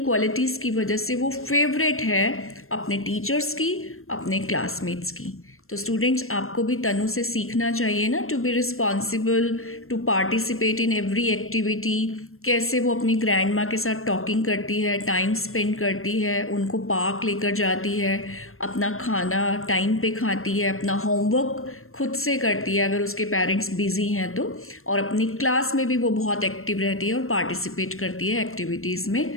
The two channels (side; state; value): right; late; 0.62 ms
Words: क्वालिटीज़ की वजह से वो फेवरेट है अपने टीचर्स की, अपने क्लासमेट्स की। तो स्टूडेंट्स, आपको भी तनु से सीखना चाहिए ना, to be responsible, to participate in every activity. कैसे वो अपनी ग्रैंड माँ के साथ टॉकिंग करती है, टाइम स्पेंड करती है, उनको पार्क लेकर जाती है, अपना खाना टाइम पे खाती है, अपना होमवर्क खुद से करती है अगर उसके पेरेंट्स बिजी हैं तो, और अपनी क्लास में भी वो बहुत एक्टिव रहती है और पार्टिसिपेट करती है एक्टिविटीज़